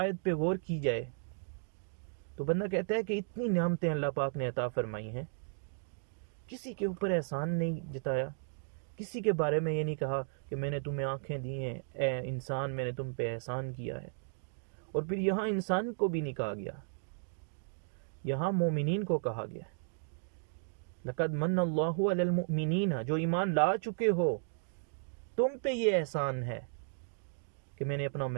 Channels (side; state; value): left; silent; digital silence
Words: پہ غور کی جائے تو بندہ کہتا ہے کہ اتنی نعمتیں اللہ پاک نے عطا فرمائی ہیں، کسی کے اوپر احسان نہیں جتایا، کسی کے بارے میں یہ نہیں کہا کہ میں نے تمہیں آنکھیں دی ہیں اے انسان، میں نے تم پہ احسان کیا ہے۔ اور پھر یہاں انسان کو بھی نہیں کہا گیا، یہاں مومنین کو کہا گیا لَقَدْ مَنَّ اللَّهُ عَلَى الْمُؤْمِنِينَ، جو ایمان لا چکے ہو تم پہ یہ احسان ہے کہ میں نے اپنا